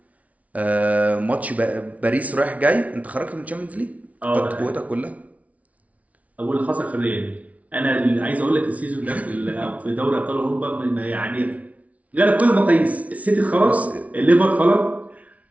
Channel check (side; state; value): left; late; 0.068 ms